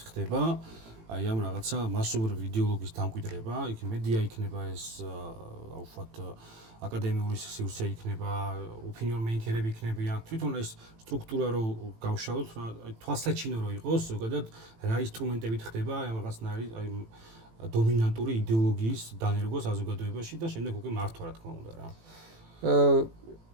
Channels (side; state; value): left; late; 18 ms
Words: ხდება აი ამ რაღაცა მასობრივი იდეოლოგიის დამკვიდრება, იქ მედია იქნება ეს აუφათ აკადემიური სივრცე იქნება, opinion maker-ები იქნებიან. თვითონ ეს სტრუქტურა რო გავშალოთ, თვალსაჩინო რო იყოს, ზოგადად რა ინსტრუმენტებით ხდება აი ამ რაღაცნაირი აი დომინანტური იდეოლოგიის დანერგვა საზოგადოებაში და შემდეგ უკვე მართვა რა თქმა უნდა რა.